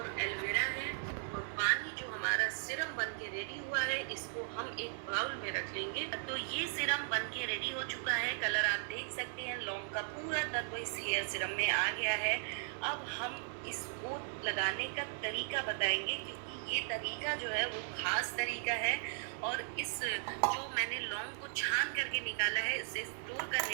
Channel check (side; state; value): left; silent; 53 dB below the other